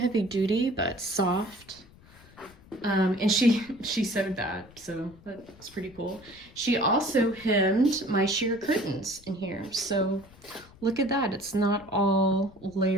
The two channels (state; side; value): noise; left; rumble, 24 dB below the sound